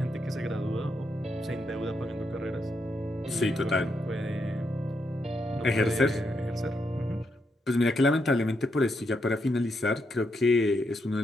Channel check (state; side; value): normal; both; correlation 0.80